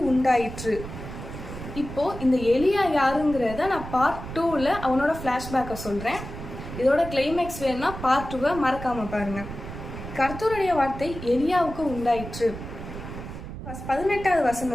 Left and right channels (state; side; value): noise; right; rumble, 10 dB below the sound